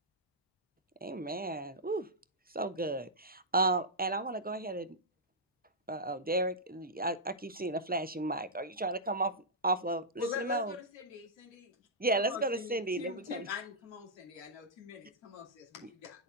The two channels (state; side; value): normal; both; correlation -0.11